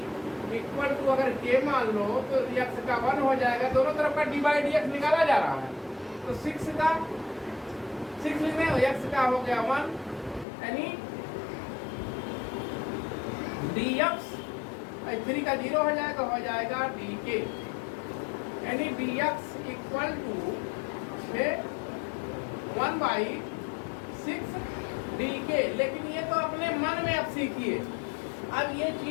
= अगर k मान लो तो x का 1 हो जाएगा, दोनों तरफ का d/dx निकाला जा रहा है, तो 6 लिखने x का हो गया 1, यानी dx 3 का 0 हो जाएगा dk, यानी dx = 1/6 dk। लेकिन ये तो अपने मन में अब सीखिए, अब ये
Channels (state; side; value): drops out; right; at 10.5 s